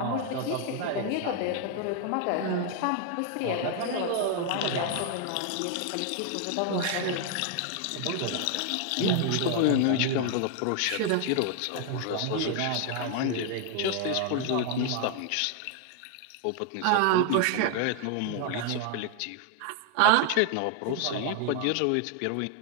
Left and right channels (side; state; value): both; different; correlation 0.00